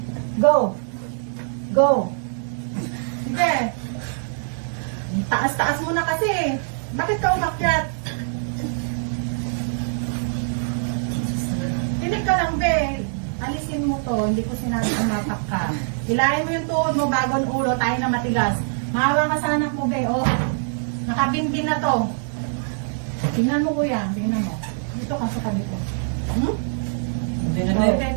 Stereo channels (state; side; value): silent; left; digital silence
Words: Go! Go! Sige. Taas-taas mo na kasi. Bakit ka umakyat? Tinig ka lang, be. Alisin mo to. Hindi ko sinabi umapak ka. Hilahin mo yung tuhod mo bago ang ulo. Tayo na matigas. Mahawa ka sa anak mo, be. Oh. Nakabinbin na to. Tingnan mo, kuya. Tingnan mo. Dito ka sa tabi ko. Hmm? Hindi na, Okay, be.